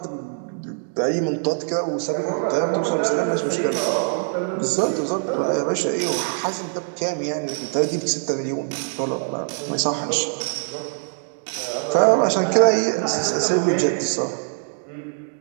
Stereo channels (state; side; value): silent; left; digital silence